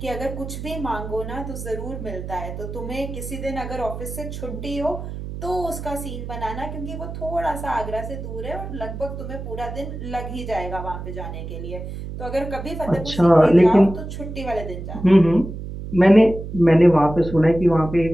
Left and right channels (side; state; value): right; noise; hum, 8 dB below the sound